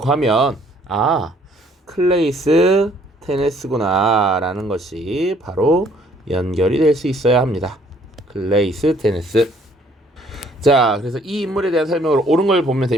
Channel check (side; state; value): both; normal; correlation 0.62